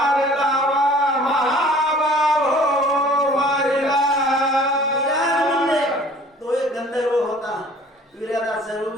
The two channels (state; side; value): normal; both; correlation 0.51